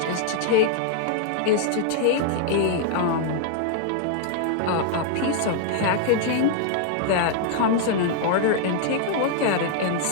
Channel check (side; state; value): both; different; correlation 0.00